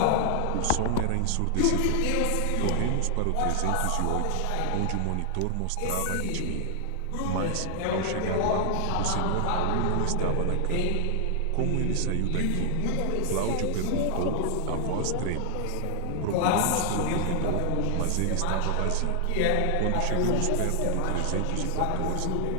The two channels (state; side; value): different; both; correlation 0.00